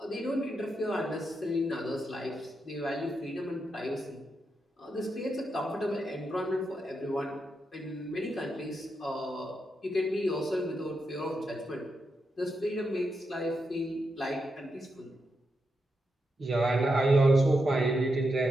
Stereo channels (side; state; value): both; normal; correlation 0.85